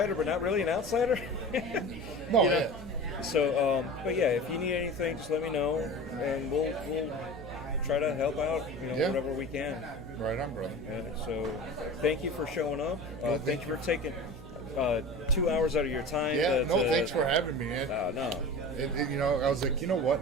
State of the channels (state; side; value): noise; right; hum, 14 dB below the sound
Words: but not really an outsider. No, you know? yeah. So, but yeah, if you need anything, just let me know, and we'll try to help out, you know, Yeah. whatever we can. Right on, brother. So, thank you for showing up. Thank you for taking 2 hours out of your time. Yeah, thanks for having me, man. No. You know, I was like, you know what?